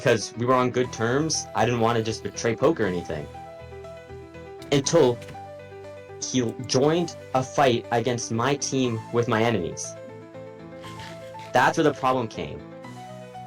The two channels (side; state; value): both; identical; correlation 1.00